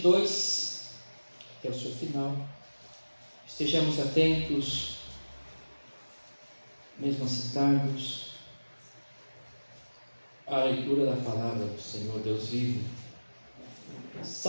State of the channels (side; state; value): both; inverted; correlation -1.00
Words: até o seu final. Estejamos atentos, mesmo assentados, à leitura da palavra do Senhor Deus vivo.